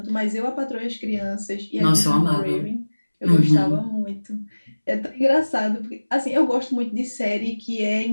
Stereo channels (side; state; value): both; inverted; correlation -1.00